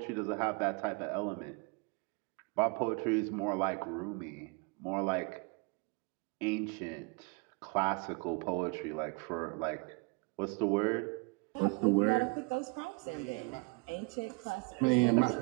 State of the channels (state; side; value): quieter; left; 30.1 dB